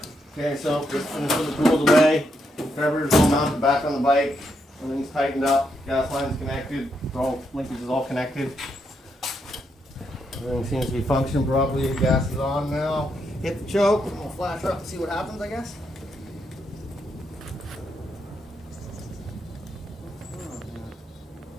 Okay, so just finish with the tools away. Carburetor's all mounted back on the bike. Everything's tightened up. Gas line's connected. Linkage is all connected. Everything seems to be functioning properly. The gas is on now. Hit the choke. We'll flash her up and see what happens, I guess.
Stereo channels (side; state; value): both; normal; correlation 0.80